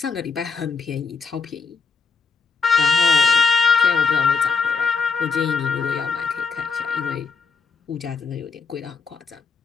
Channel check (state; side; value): quieter; right; 5.1 dB